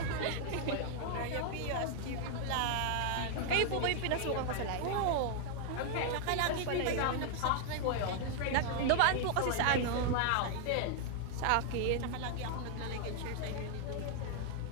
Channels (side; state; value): both; different; correlation 0.00